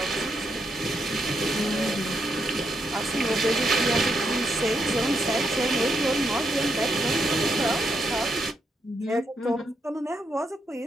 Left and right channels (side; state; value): both; normal; correlation 0.80